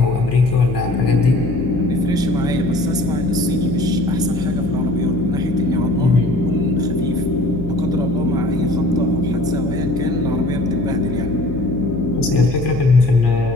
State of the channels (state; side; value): noise; left; hum, 9 dB below the sound